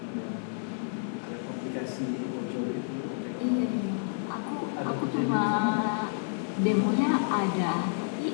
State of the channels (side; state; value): right; silent; 58 dB below the other